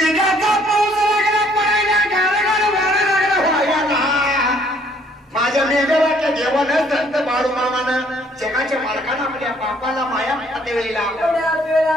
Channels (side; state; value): both; normal; correlation 0.63